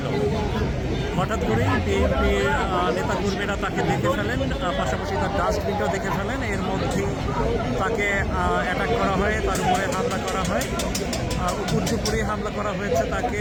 হঠাৎ করেই বিএনপির নেতাকর্মীরা তাকে দেখে ফেলেন, পাশাপাশি তার ডাস্টবিনটাও দেখে ফেলেন। এর মধ্যেই তাকে অ্যাটাক করা হয়, তার উপরে হামলা করা হয়, উপর্যুপুরি হামলা করা হয়েছে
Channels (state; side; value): identical; both; correlation 1.00